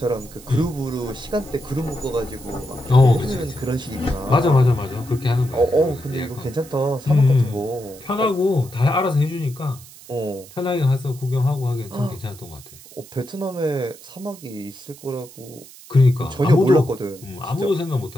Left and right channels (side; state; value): right; noise; hiss, 20 dB below the sound